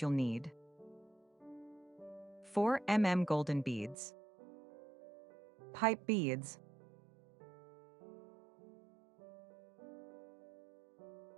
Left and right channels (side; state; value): left; drops out; at 4.0 s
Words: you'll need. 4 golden beads, pipe beads,